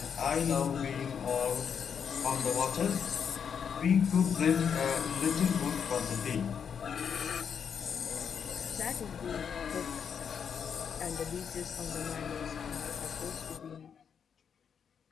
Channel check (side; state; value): right; quieter; 7.2 dB